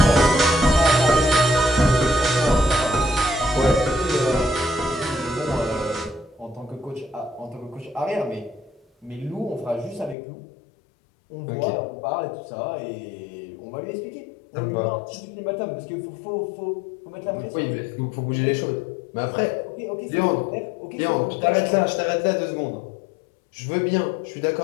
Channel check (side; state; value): right; drops out; at 10.2 s